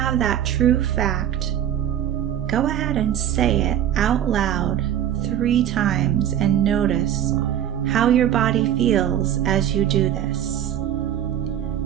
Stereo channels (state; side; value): quieter; left; 10.8 dB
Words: that true fact, go ahead and say it out loud 3 times and notice how your body feels as you do this.